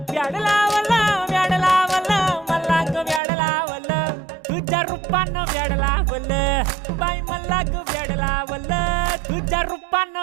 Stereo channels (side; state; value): left; drops out; at 3.2 s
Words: व्याड लावलं व्याड लावलं मला ग व्याड लावलं तुझ्या रूपानं व्याड लावलं बाई मला ग व्याड लावलं तुझ्या